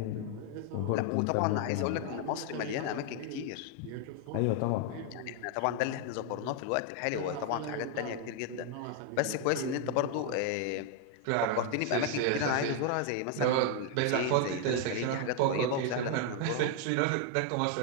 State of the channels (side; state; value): both; different; correlation 0.00